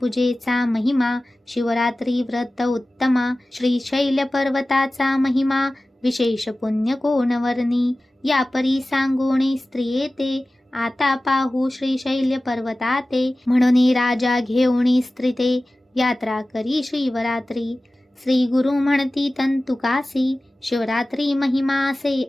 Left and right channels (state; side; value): normal; both; correlation 0.96